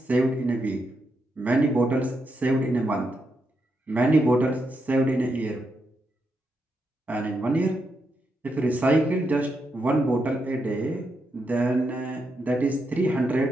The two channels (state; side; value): normal; both; correlation 0.83